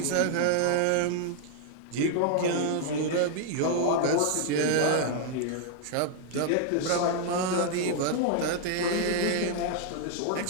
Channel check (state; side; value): different; both; correlation 0.00